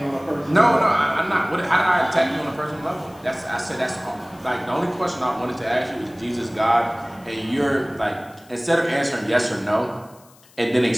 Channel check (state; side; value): noise; left; hiss, 27 dB below the sound